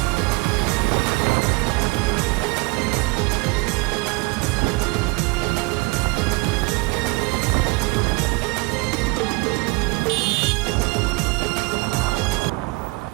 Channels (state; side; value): quieter; left; 25.9 dB